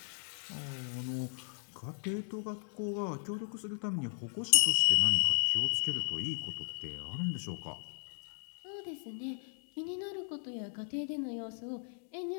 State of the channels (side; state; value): right; silent; 54 dB below the other